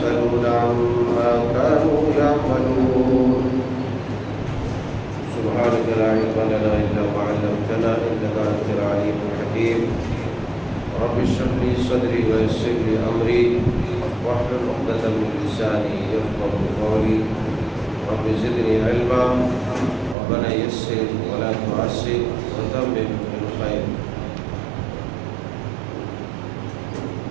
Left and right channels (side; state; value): left; drops out; at 20.2 s